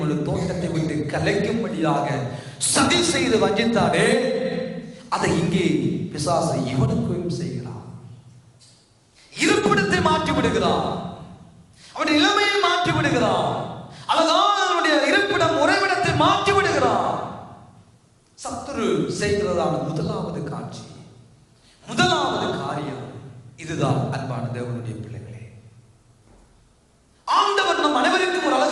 ஒரு தோட்டத்தை விட்டு கலைக்கும்படியாக சதி செய்து வஞ்சித்தானே, அதை இங்கே பிசாசு இவனுக்கும் செய்கிறான். இருப்பிடத்தை மாற்றி விடுகிறான், அவனுடைய நிலைமையை மாற்றி விடுகிறான், அழகான அவனுடைய இருப்பிடம் உறைவிடத்தை மாற்றி விடுகிறான். சத்துரு செய்கிறதான முதலாவது காட்சி, முதலாவது காரியம் இதுதான். அன்பான தேவனுடைய பிள்ளைகளே, ஆண்டவர் நம் அனைவருக்கும் ஒரு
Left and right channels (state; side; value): identical; both; correlation 1.00